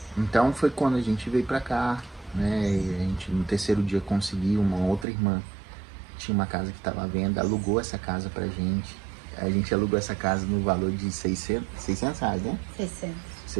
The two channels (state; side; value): drops out; left; at 5.1 s